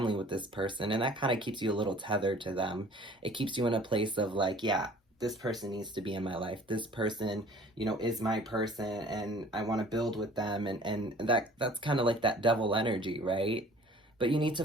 with this person, and that kind of keeps you a little tethered to them. It keeps you in a place of, like, yeah, this person needs to be in my life. This person, you know, is my person, and I want to build with them. And that's kind of like that devil energy, right? But you need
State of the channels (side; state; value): both; normal; correlation 0.50